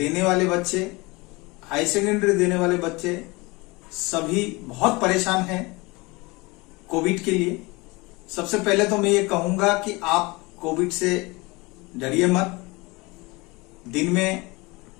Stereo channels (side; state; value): right; quieter; 24.5 dB